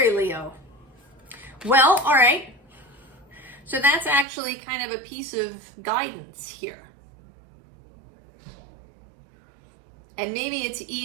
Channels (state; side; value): drops out; left; at 4.2 s